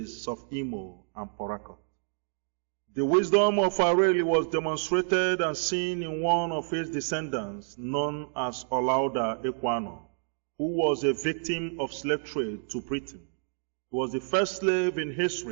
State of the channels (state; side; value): silent; left; digital silence